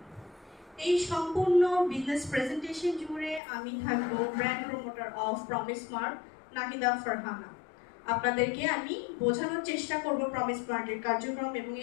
এই সম্পূর্ণ বিজনেস প্রেজেন্টেশন জুড়ে আমি থাকবো brand promoter of promise mart Nahida Farhana. আপনাদেরকে আমি বোঝানোর চেষ্টা করব প্রমিস মার্টের কার্যক্রম এবং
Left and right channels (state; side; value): drops out; right; at 3.4 s